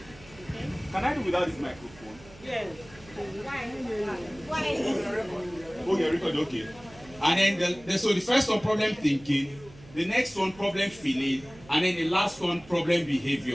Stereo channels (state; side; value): noise; right; hum, 22 dB below the sound